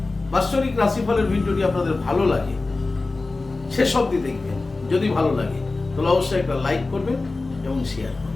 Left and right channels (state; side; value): quieter; right; 3.5 dB